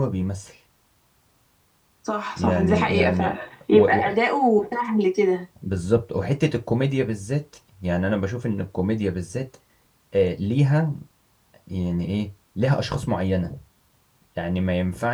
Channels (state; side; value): identical; both; correlation 1.00